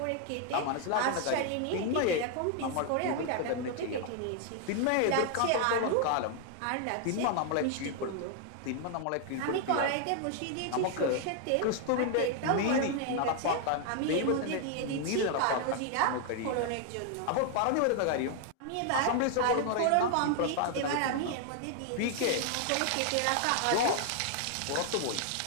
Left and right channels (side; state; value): both; different; correlation 0.00